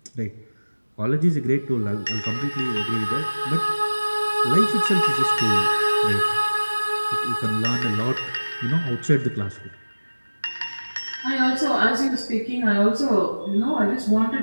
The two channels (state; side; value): inverted; both; correlation -1.00